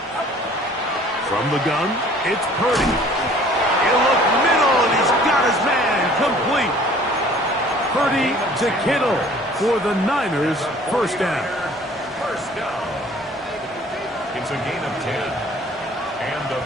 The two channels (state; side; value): normal; both; correlation 0.52